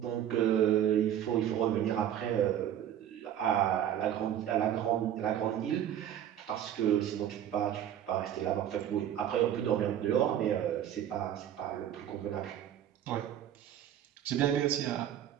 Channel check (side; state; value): left; quieter; 10.5 dB